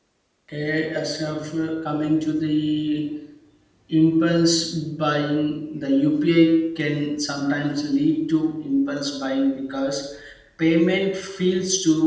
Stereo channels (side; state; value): both; identical; correlation 1.00